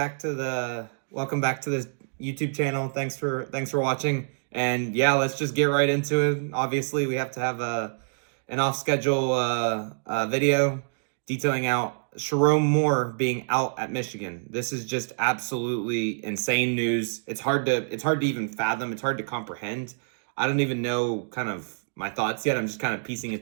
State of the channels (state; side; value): silent; left; digital silence